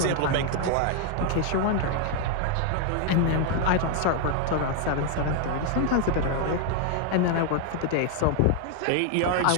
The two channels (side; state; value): both; different; correlation 0.00